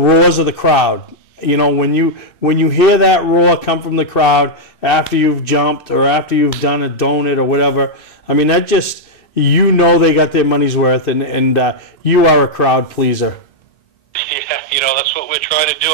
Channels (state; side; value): late; right; 2.6 ms